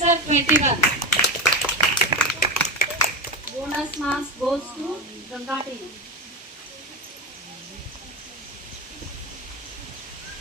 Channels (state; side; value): normal; both; correlation 0.18